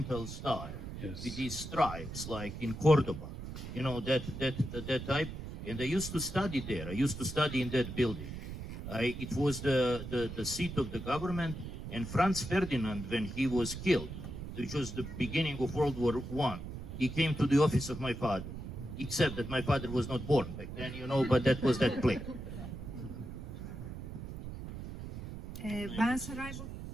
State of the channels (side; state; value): right; noise; rumble, 9 dB below the sound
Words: style, yes, with these stripes, like in Cordoba, you know, that type. And I used to study there. I used to study in that building. It was the seat of the government, and Franz Ferdinand, when he was killed, which was the beginning of World War I, he came to the office of my father, except that my father was not born back then, you know, but that was that place.